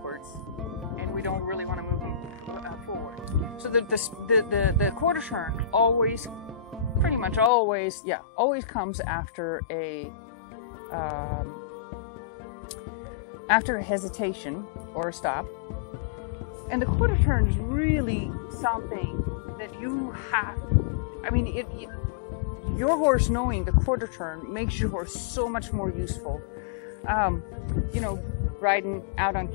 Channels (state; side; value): drops out; right; at 7.5 s